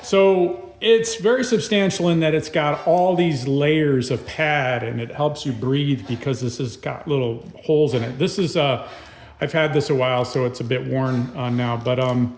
So it's very substantial in that it's got all these layers of pad, and it helps you breathe because this has got little holes in it. This is, I've had this a while, so it's a bit worn now, but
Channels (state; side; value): identical; both; correlation 1.00